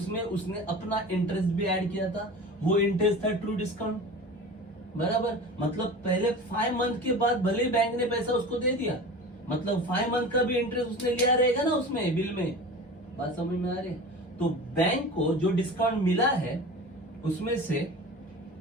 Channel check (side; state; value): both; normal; correlation 0.35